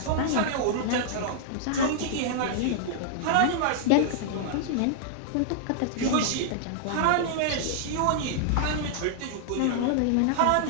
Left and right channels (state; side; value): different; both; correlation -0.01